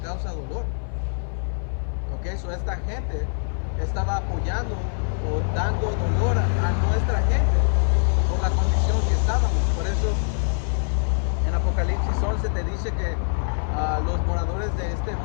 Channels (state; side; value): silent; right; 57 dB below the other